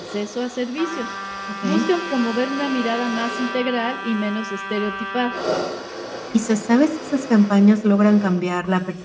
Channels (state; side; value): identical; both; correlation 1.00